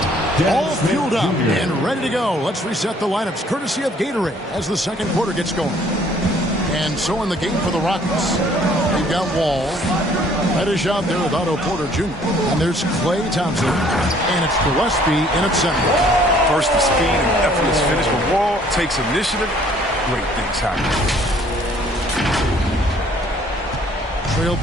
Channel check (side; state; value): both; normal; correlation 0.59